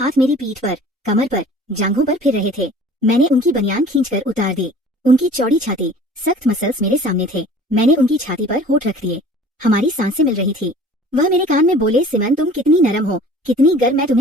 मेरी पीठ पर, कमर पर, जांघों पर फिर रहे थे। मैंने उनकी बनियान खींचकर उतार दी। उनकी चौड़ी छाती, सख्त मसल्स मेरे सामने थे। मैंने उनकी छाती पर होठ रख दिए। हमारी सांसें मिल रही थी। वह मेरे कान में बोले, सिमन तुम कितनी नरम हो, कितनी गर्म, मैं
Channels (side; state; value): both; normal; correlation 0.47